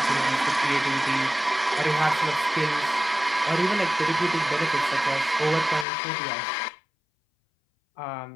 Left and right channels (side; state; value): right; drops out; at 5.9 s